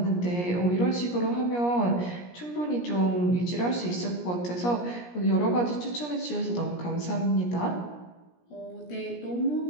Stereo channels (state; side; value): late; right; 17 ms